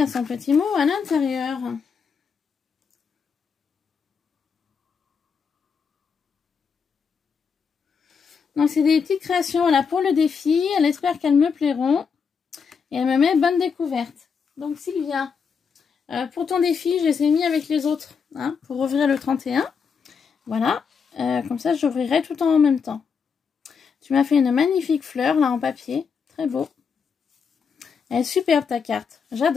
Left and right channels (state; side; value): quieter; right; 6.0 dB